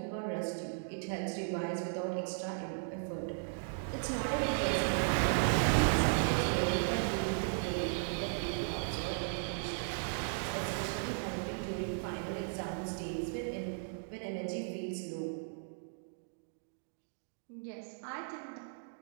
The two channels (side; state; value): left; silent; digital silence